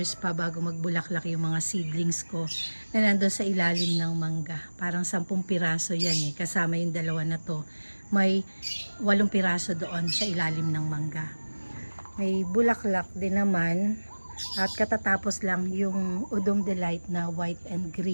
pa bago magbulaklak yung mga seedlings ko na nandun sa ilalim ng mangga. Parang 10 piraso yan kasama yung 2 na to. May 8 piraso doon sa ilalim ng mangga. May bulaklak din naman. At katatapos lang yung Udom Delight na white and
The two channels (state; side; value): inverted; both; correlation -1.00